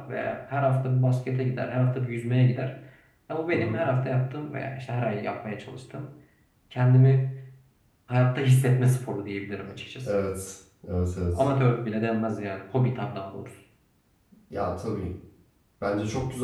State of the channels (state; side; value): identical; both; correlation 1.00